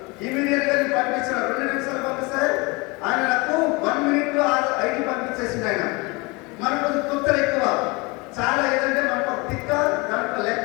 ఇమీడియట్ గా పంపించారు. 2 నిమిషాలు పంపిస్తే ఆయన నాకు 1 minute లో ఐడి పంపించేసింది. ఆయన మనకు తుత్తలు ఎక్కువ చాలా, ఏదంటే మనకు ఒక తిక్క దాంట్లో లెక్క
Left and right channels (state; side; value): quieter; right; 26.2 dB